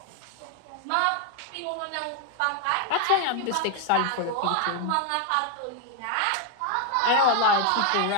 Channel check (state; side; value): different; both; correlation 0.01